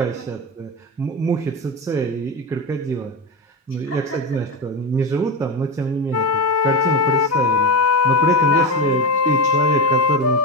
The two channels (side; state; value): both; normal; correlation 0.18